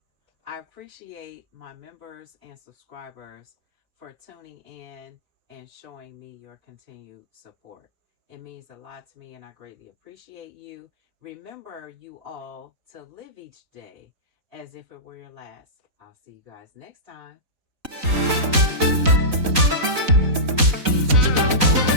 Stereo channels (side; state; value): left; late; 4.0 ms